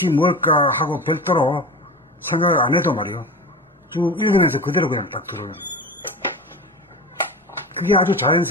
뭘까 하고 별도로 생각을 안 해도 말이요. 쭉 읽으면서 그대로 그냥 딱 들어오는 거예요. 그게 아주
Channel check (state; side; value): normal; both; correlation 0.30